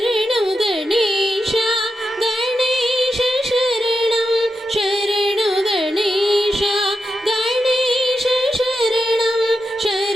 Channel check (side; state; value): both; normal; correlation 0.87